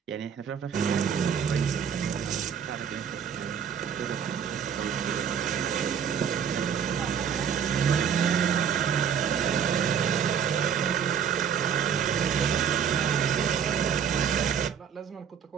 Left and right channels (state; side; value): quieter; left; 7.8 dB